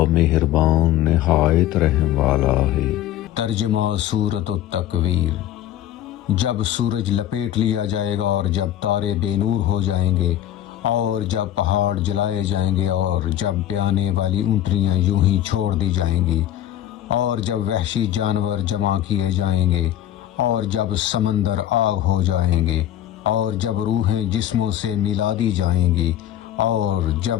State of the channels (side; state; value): right; quieter; 12.3 dB